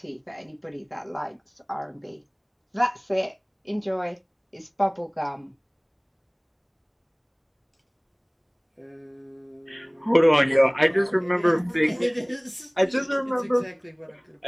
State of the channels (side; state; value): both; identical; correlation 1.00